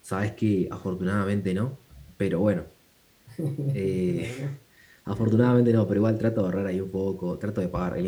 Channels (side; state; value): both; identical; correlation 1.00